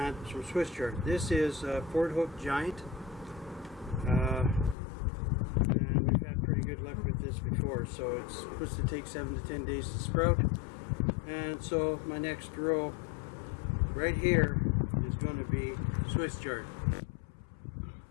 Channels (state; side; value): drops out; right; at 4.8 s